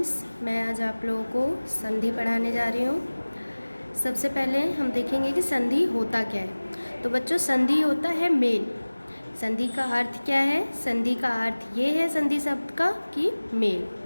मैं आज आप लोगों को संधि पढ़ाने जा रही हूँ। सबसे पहले हम देखेंगे कि संधि होता क्या है। तो बच्चों, संधि होता है मेल। संधि का अर्थ क्या है? संधि का अर्थ ये है संधि शब्द का कि मेल।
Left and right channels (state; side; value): inverted; both; correlation -1.00